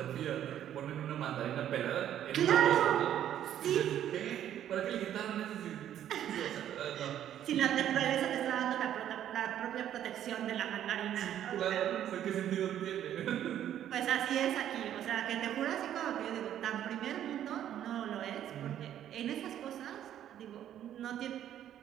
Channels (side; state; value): left; quieter; 10.9 dB